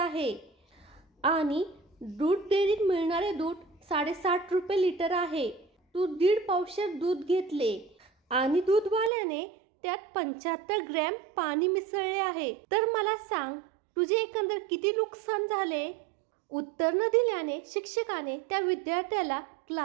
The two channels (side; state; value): left; drops out; at 9.1 s